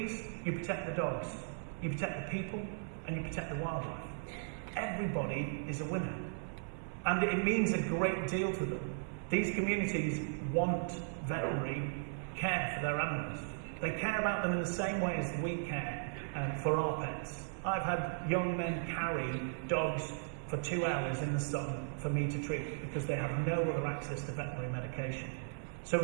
you protect the dogs, you protect the people, and you protect the wildlife. Everybody is a winner. And it means a great deal to them. These communities want veterinary care for their animals. They care about them in the same way as we care for our pets. I've had young men carry dogs for 2 hours in the sun for me to treat because they have no other access to veterinary medication. So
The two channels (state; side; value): silent; left; 53 dB below the other